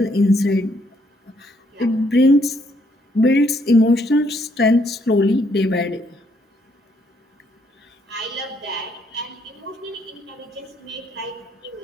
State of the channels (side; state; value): both; normal; correlation 0.70